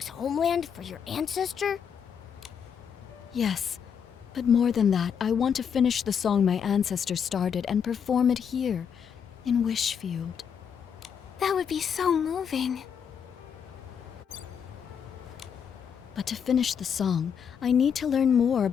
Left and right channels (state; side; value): quieter; right; 7.5 dB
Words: homeland for your ancestor? Yes, but more than that, I want to finish the song my ancestor started and perform it here, in Wishfield. That would be so moving. But to finish the song, I need to learn more